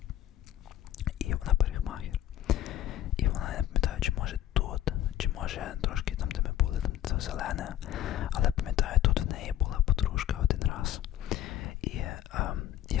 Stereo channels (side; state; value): right; quieter; 12.1 dB